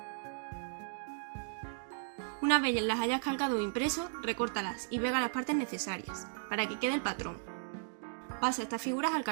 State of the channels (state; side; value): silent; left; digital silence